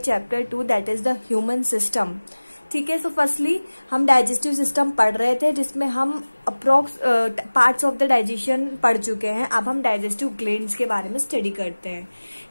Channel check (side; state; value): both; inverted; correlation -1.00